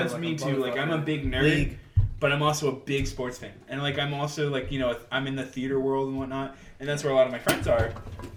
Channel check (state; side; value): identical; both; correlation 1.00